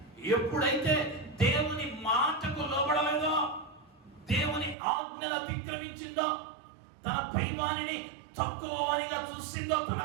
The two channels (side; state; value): left; drops out; at 4.8 s